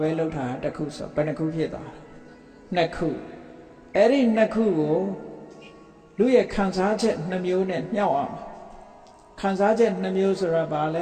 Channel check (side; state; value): both; identical; correlation 1.00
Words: ဘဲလုပ်တာတစ်ခုဆိုဘယ်နှခုဖြစ်သွားနှစ်ခုအဲ့ဒီနှစ်ခုကိုလူရဲ့ခံစားချက်နှမျိုးနဲ့မြှောက်အောင်ခံစားချက်နှမျိုးဆိုတာဘာလ